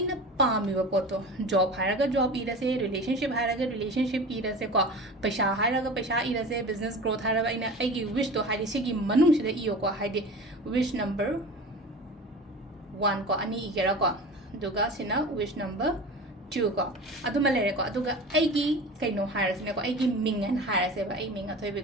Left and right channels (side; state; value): both; normal; correlation 0.34